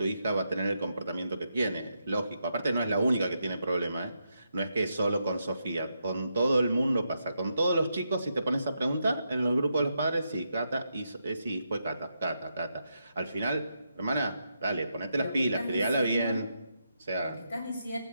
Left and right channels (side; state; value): both; inverted; correlation -0.83